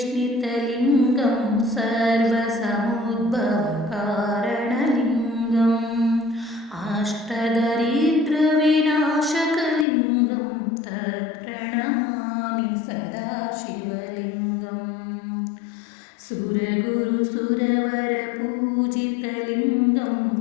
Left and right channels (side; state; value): right; drops out; at 9.9 s